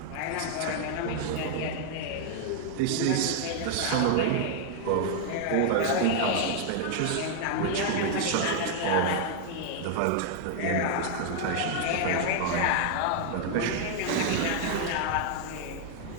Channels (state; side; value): different; both; correlation 0.00